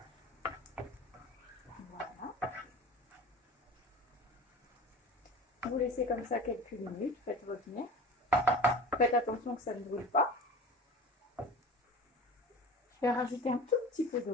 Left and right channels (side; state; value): both; normal; correlation 0.37